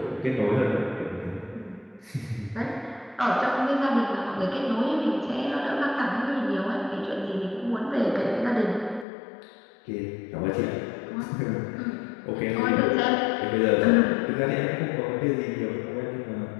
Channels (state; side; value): drops out; right; at 9.1 s